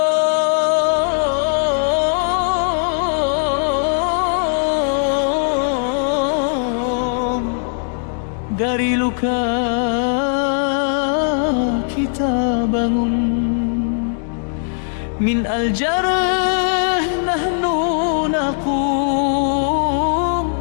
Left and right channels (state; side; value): silent; right; digital silence